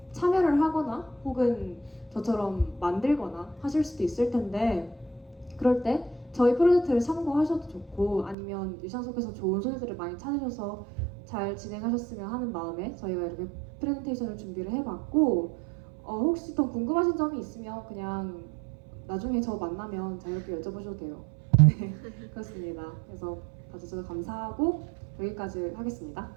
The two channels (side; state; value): left; drops out; at 8.3 s